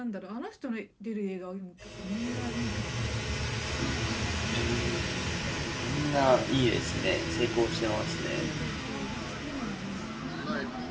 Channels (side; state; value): both; identical; correlation 1.00